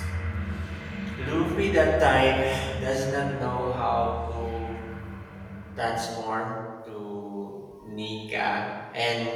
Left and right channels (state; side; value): identical; both; correlation 1.00